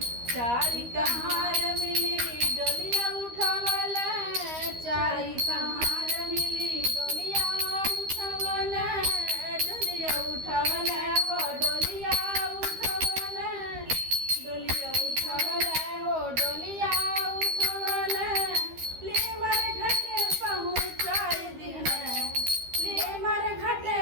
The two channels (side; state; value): left; late; 13 ms